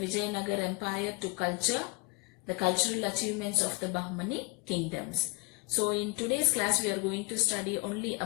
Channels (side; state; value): right; quieter; 27.0 dB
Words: empire to culture, the cultural achievements of the Bahmani kingdoms. So in today's class we are going to study only